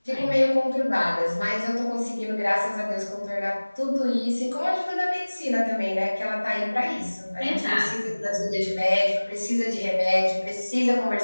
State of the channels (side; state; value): both; inverted; correlation -1.00